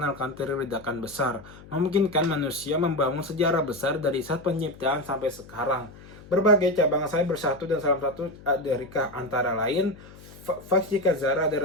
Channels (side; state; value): left; noise; hum, 20 dB below the sound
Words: teori ledakan besar, memungkinkan manusia membangun sejarah besar dari saat penciptaan sampai sekarang. Berbagai cabang sayap bersatu dan salah satu dari antara lain fisika zarah dan